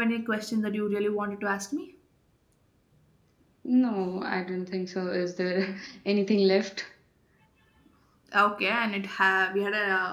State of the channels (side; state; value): both; identical; correlation 1.00